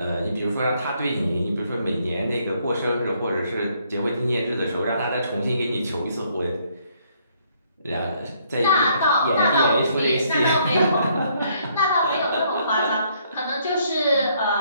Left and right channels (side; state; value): both; inverted; correlation -0.68